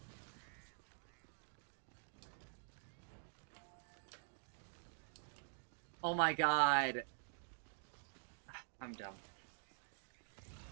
Oh my god. I'm dumb.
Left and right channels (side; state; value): left; silent; digital silence